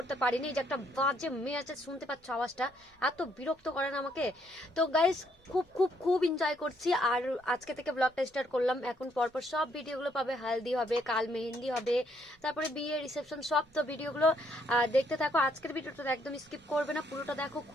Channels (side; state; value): both; normal; correlation 0.71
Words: পারিনি। যে একটা বাজে মেয়ে আছে, শুনতে পাচ্ছ আওয়াজটা, এত বিরক্ত করেন আমাকে। তো গাইস, খুব খুব খুব এনজয় করছি। আর আজকে থেকে ব্লগটা স্টার্ট করলাম। এখন পরপর সব ভিডিওগুলো পাবে। হালদি হবে, কাল মেহেন্দি হবে, তারপরে বিয়ে, রিসেপশন, সব। তো ভিডিওগুলো দেখতে থাকো। আজকের ভিডিওটা একদম স্কিপ করবে না, পুরোটা দেখো,